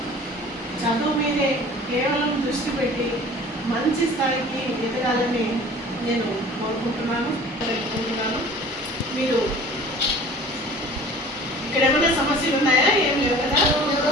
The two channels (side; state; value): both; normal; correlation 0.45